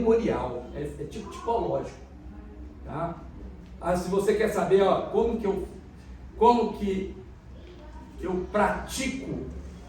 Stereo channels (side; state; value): both; identical; correlation 1.00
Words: é tipo tipológico, tá? Se você quer saber, ó, como que eu pratico